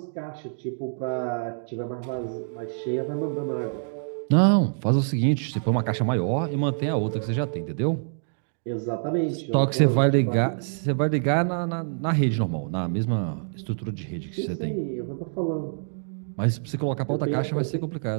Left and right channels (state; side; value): silent; left; digital silence